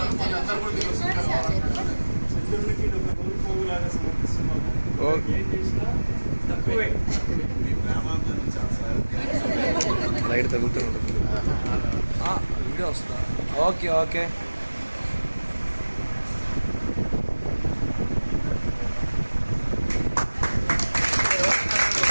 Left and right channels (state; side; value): inverted; both; correlation -1.00